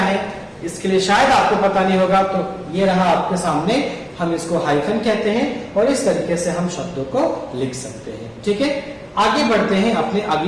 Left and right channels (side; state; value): both; identical; correlation 1.00